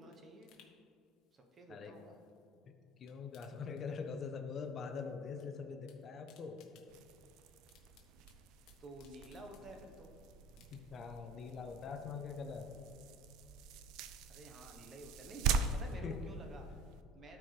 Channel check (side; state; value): both; normal; correlation 0.43